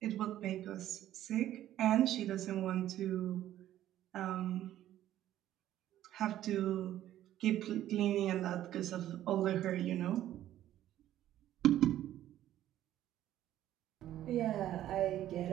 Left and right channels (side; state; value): left; quieter; 12.7 dB